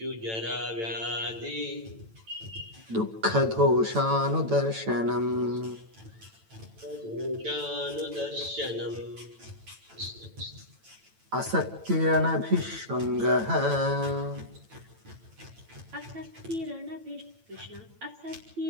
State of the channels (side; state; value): left; late; 9.0 ms